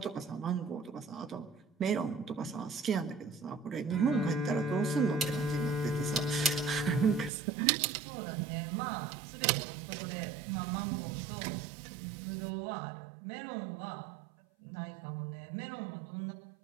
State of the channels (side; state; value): left; drops out; at 7.3 s